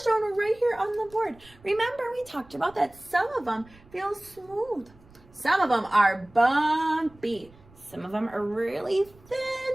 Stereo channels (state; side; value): noise; right; rumble, 26 dB below the sound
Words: shown right here on the board. Remember, we talked about that some of them feel smooth. Some of them are bumpy. Some of them are really